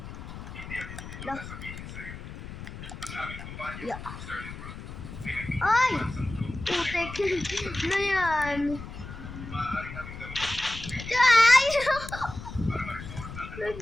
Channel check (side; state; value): left; noise; rumble, 11 dB below the sound